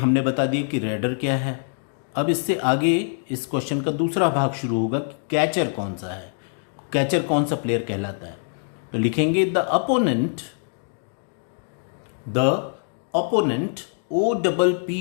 बता दिया कि रेडर क्या है। अब इससे आगे इस क्वेश्चन का दूसरा भाग शुरू होगा कि कैचर कौन सा है, कैचर कौन सा प्लेयर कहलाता है। तो लिखेंगे the opponent The opponent,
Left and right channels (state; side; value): silent; right; digital silence